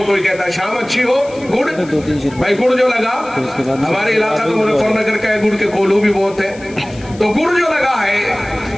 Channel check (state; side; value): noise; left; hiss, 22 dB below the sound